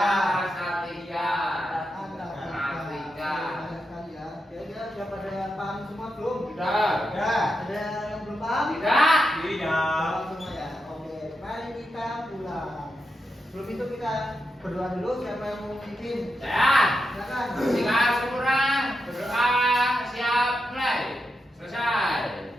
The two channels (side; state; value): both; normal; correlation 0.86